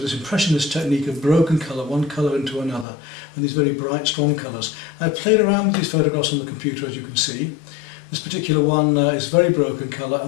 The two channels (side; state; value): right; drops out; at 2.9 s